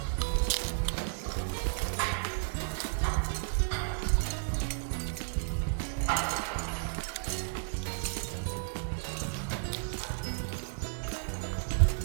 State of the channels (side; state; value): left; silent; digital silence